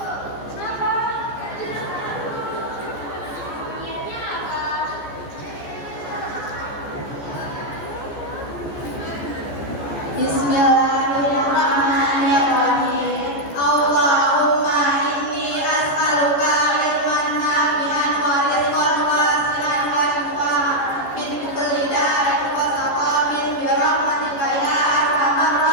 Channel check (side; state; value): right; late; 14 ms